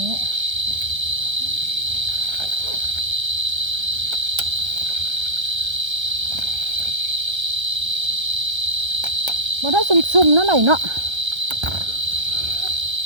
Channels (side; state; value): left; late; 1.3 ms